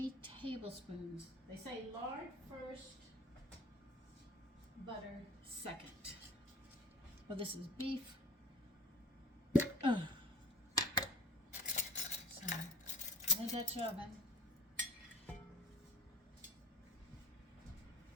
tablespoons. They say lard first, butter second. Well, this is beef. So, in a Dutch oven.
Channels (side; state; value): both; normal; correlation 0.38